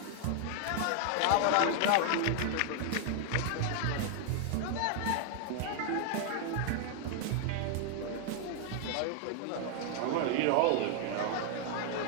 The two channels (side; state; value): both; different; correlation 0.00